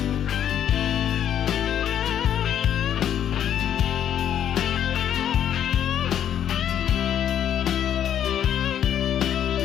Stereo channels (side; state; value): right; quieter; 9.9 dB